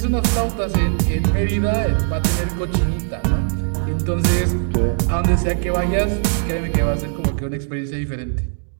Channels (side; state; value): left; silent; digital silence